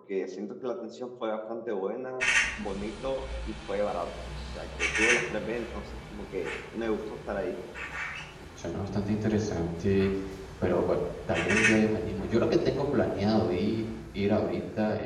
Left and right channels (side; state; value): both; identical; correlation 1.00